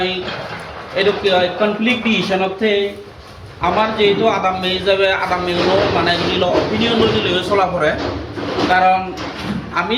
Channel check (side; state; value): both; identical; correlation 1.00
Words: এইটো কি হয় কনফ্লিক্ট ডিসিশনতে আমার যেহেতু আদাম মে হিসাবে আদাম মেগুলো মানে ধরিল অপিনিয়ন লৈ চলা পড়ে কারণ আমি